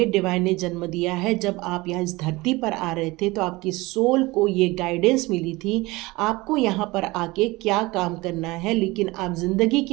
डिवाइन ने जन्म दिया है। जब आप यहाँ इस धरती पर आ रहे थे तो आपकी सोल को ये गाइडेंस मिली थी आपको यहाँ पर आके क्या काम करना है, लेकिन आप जिंदगी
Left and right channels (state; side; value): quieter; left; 21.7 dB